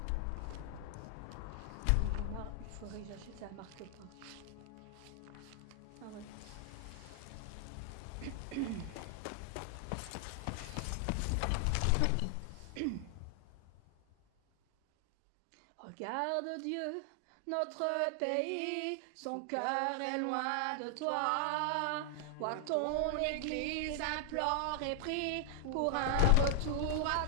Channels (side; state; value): both; different; correlation 0.00